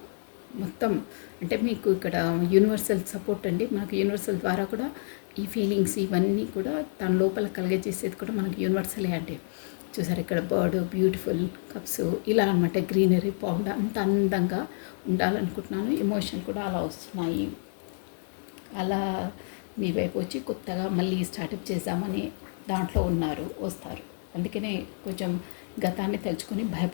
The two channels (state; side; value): silent; right; digital silence